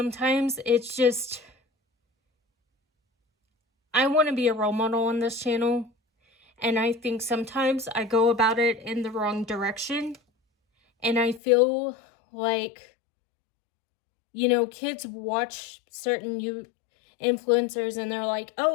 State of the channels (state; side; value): drops out; right; at 11.4 s